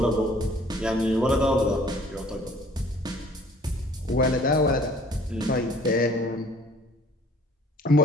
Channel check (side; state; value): both; normal; correlation 0.55